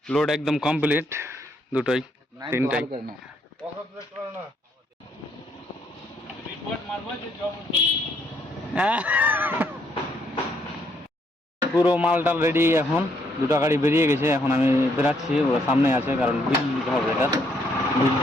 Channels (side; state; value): both; normal; correlation 0.71